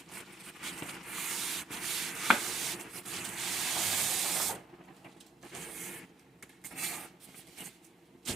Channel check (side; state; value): left; quieter; 3.8 dB